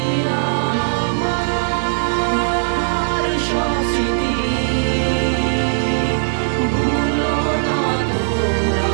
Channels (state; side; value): silent; left; 67 dB below the other